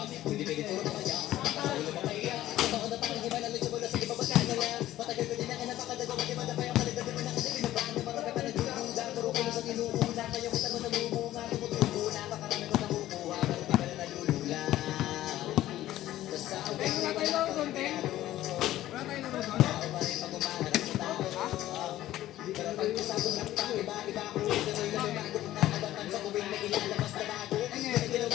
Hindi pwede puro mamaya, nakaulo mo kaya. Totoo na parang iba na lucha mo na sige papagkakala. Matagal ko din na kinapakadago, magimada pa yung kalagdag mo na kasi pinabaan ng mga kapanagulunga. Puro ko sa inuuna, kaya kita mo namumunga. Tumutubo na, pakarami ko nakukuha, pero di ka na nalulula. Basta ako ay wala pa rin pero pag-usapon ng tao, iba-iba ako. Tuloy na lumago kung nakabatan sa tuwing na ilalabas na bago. Kaya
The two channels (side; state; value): right; quieter; 14.3 dB